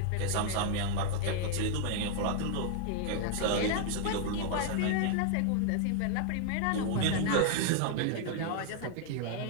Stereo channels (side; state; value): both; different; correlation 0.00